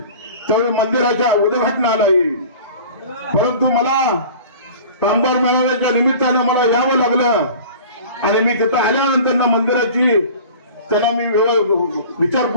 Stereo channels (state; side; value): inverted; both; correlation -0.42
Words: त्यावेळी मंदिराच्या उद्घाटनाला येईल. परंतु मला कामगार मेळाव्याच्या निमित्तानं मला यावं लागलं आणि मी तिथं आल्यानंतर मंदिराची त्यांना मी